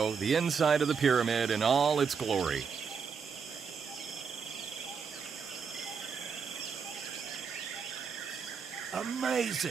the inside of the pyramid in all its glory.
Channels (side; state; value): left; quieter; 6.0 dB